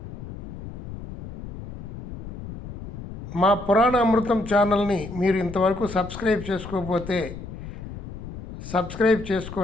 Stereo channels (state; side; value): noise; left; rumble, 11 dB below the sound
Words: మా పురాణ అమృతం ఛానల్ని మీరు ఇంతవరకు సబ్స్క్రైబ్ చేసుకోకపోతే సబ్స్క్రైబ్